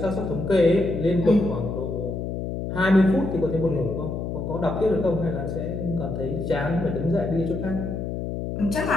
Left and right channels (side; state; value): left; noise; hum, 4 dB below the sound